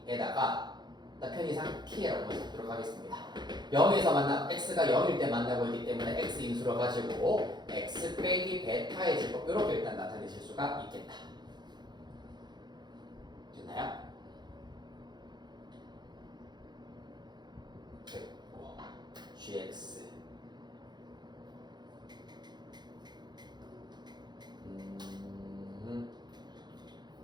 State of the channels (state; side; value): late; left; 0.21 ms